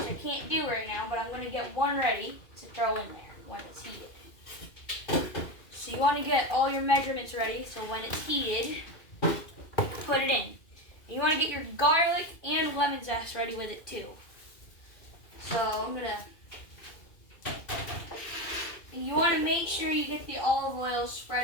I can't do right now, but I'm going to get one ready to throw in there. when it's heated. So you want to get all your measurements ready, so when it's heated, put it in. And you want to get your garlic and lemon zest ready with it too. So I'm gonna, and you want to make sure you get the olive oil spread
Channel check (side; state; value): right; late; 2.5 ms